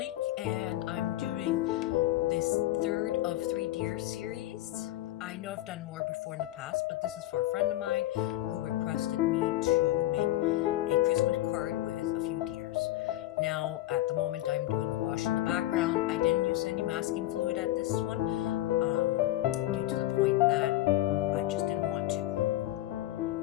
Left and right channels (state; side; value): quieter; right; 15.4 dB